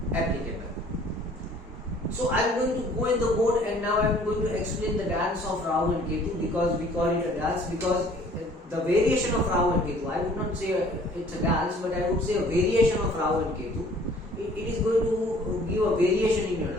applicable. So I am going to go in the board, and now I am going to explain the dance of Rahu and Ketu, because we call it a dance, because the variation of Rahu and Ketu, I would not say it's a dance, but I would say a variation of Rahu and Ketu. It is going to give a variation in your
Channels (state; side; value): normal; both; correlation 0.55